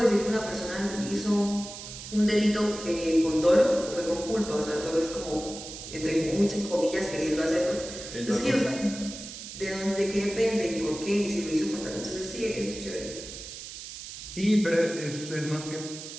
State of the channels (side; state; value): right; noise; hiss, 11 dB below the sound